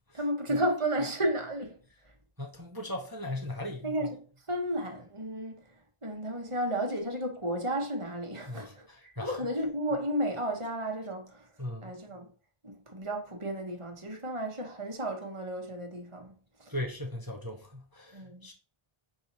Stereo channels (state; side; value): late; left; 1.4 ms